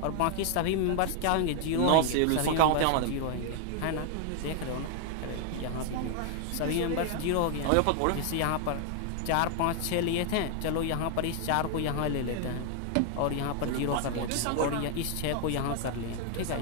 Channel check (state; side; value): different; both; correlation 0.00